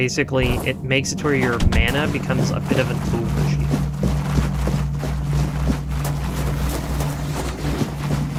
it makes it to where your mana becomes a bit of an overshield.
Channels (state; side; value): identical; both; correlation 1.00